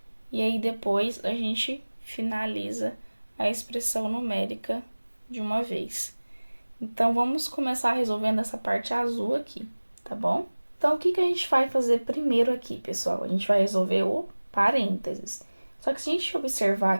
E aí, depois, a gente finaliza a expressão numérica de uma vez. Então, vamos começar resolvendo essa parte azul aqui, tá bom? Então, o que a gente vai fazer primeiro aqui, pessoal? A gente vai resolver o parênteses. Só que se a gente observar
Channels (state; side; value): inverted; both; correlation -1.00